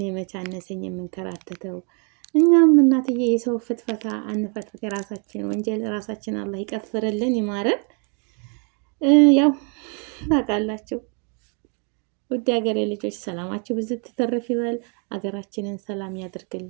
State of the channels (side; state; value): left; quieter; 37.6 dB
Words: መቻነሰኝ የምንከራተተው እኛም እናትዬ የሰው ፍትፈታ አንፈትፍት። የራሳችን ወንጀል ራሳችን አላህ ይቀፍርልን ይማረን። ያው ታውቃላችሁ ውድ ሀገሬ ልጆች ሰላማችሁ ብዙ ትተረፍ ይበል። ሀገራችንን ሰላም